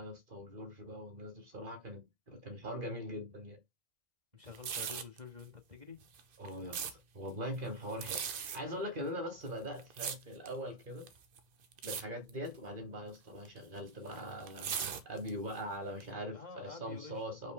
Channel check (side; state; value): left; late; 2.5 ms